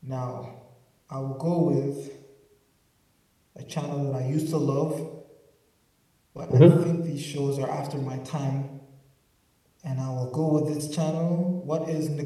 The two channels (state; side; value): identical; both; correlation 1.00